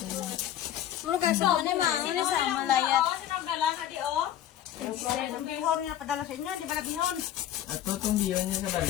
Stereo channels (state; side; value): quieter; right; 11.5 dB